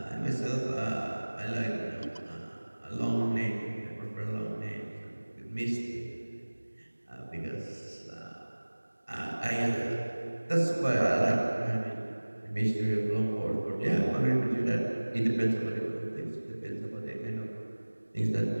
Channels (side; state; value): both; inverted; correlation -1.00